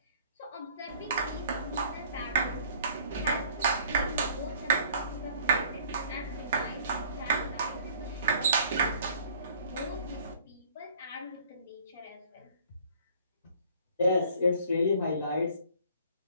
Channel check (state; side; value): inverted; both; correlation -0.54